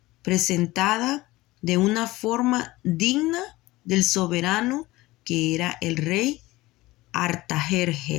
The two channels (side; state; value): right; quieter; 19.2 dB